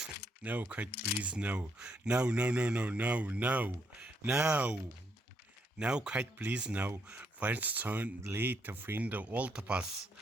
Kite, please, no. No, Kite, please, no. Find son late to find the altar pass.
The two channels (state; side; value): normal; both; correlation 0.75